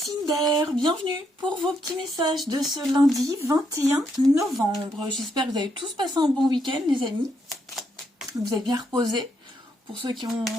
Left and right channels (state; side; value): normal; both; correlation 0.77